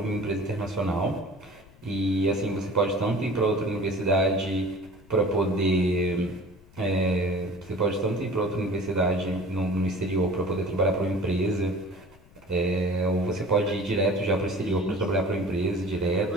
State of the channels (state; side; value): noise; left; rumble, 26 dB below the sound